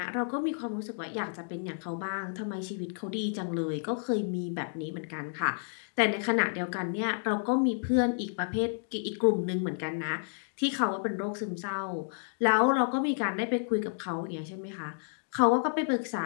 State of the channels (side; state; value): right; silent; digital silence